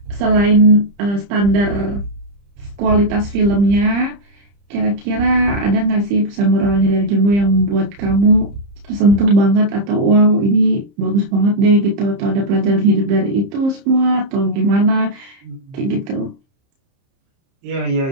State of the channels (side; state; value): left; late; 30 ms